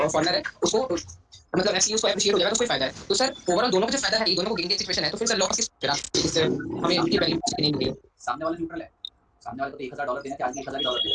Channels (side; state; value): both; identical; correlation 1.00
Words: है उसको मतलब ऐसे उसको एप्रिशिएट हो जाएगा, तो उसको फायदा है। तो सर ओवरऑल दोनों को जो फायदा है, ये दोनों को गेन की सिचुएशन है, तो फिर सर लॉस किस हमें इनकी वैल्यू नहीं मिली है। सामने वाला न्यूट्रल है। सामने वाले को तो $1,000 देना चाहिए, आज भी $1,000